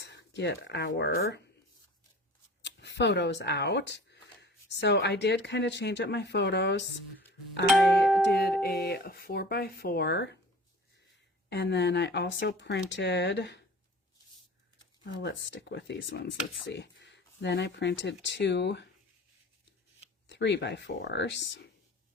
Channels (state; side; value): normal; both; correlation 0.43